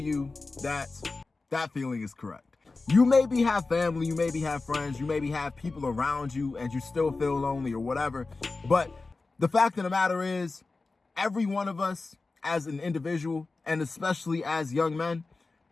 that that feeling is correct. You maybe have family, you maybe have friends, you maybe have people around you and you still feel lonely or whatever. But the fact of the matter is, every one of us as an individual, and especially as young men,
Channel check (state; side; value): quieter; right; 3.7 dB